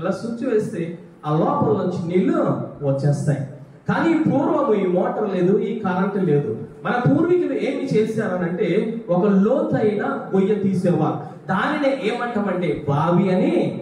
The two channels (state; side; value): identical; both; correlation 1.00